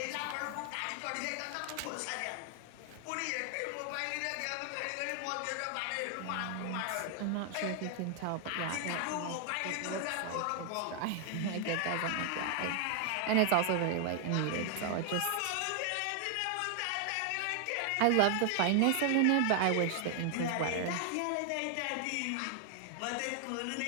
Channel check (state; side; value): different; both; correlation 0.00